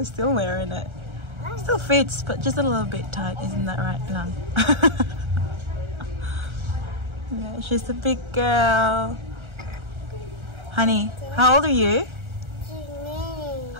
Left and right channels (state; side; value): late; left; 1.4 ms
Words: still wearing it. Still fits, but just a little bit tight. Isn't that right, Lang? Yeah, she's a big girl. Honey, how old are you?